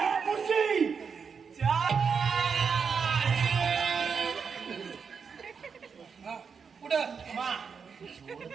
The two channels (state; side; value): quieter; left; 6.0 dB